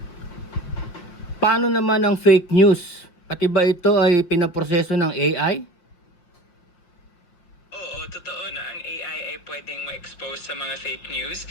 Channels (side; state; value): right; late; 5.6 ms